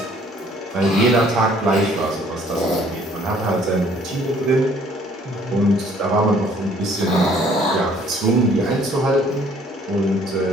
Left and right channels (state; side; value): normal; both; correlation 0.59